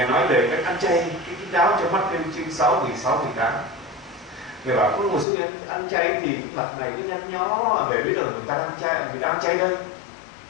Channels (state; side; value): drops out; right; at 5.2 s